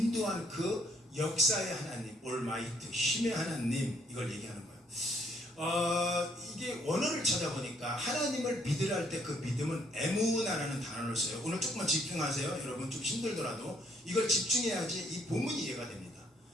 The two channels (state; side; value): normal; both; correlation 0.68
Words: 그 역사의 하나님, 올마이트, 힘의 하나님, 이걸 얘기하는 거예요. 이게 원어를 찾아보니까 하나님을 믿으라 할 때 그 믿음은 에무나라는 단어를 써요. 오늘 조금만 집중하세요. 여러분 좀 힘들더라도 이걸 집중해야지 이 본문이 이해가 됩니다.